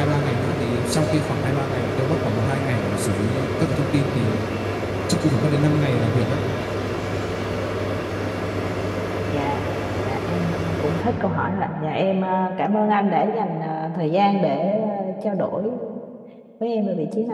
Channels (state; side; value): identical; both; correlation 1.00